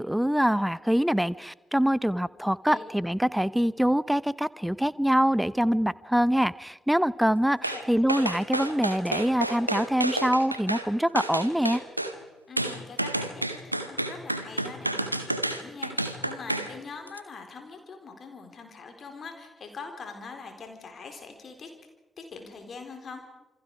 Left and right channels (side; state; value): both; normal; correlation 0.77